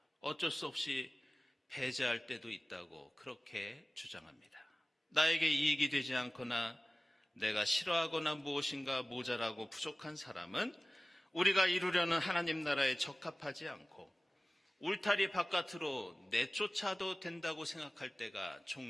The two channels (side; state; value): both; normal; correlation 0.98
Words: 어쩔 수 없이 배제할 때도 있다고 그렇게 주장합니다. 나에게 이익이 되지 않거나 내가 싫어하거나 무엇인가 모자라고 부족한 사람은 우리가 이루려는 하나님 나라에 적합하지 않고 울타리 바깥으로 내쫓아도 된다고 생각할 때가